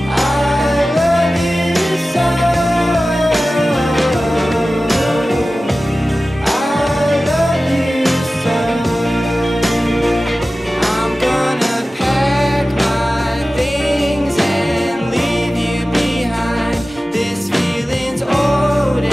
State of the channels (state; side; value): normal; both; correlation 0.96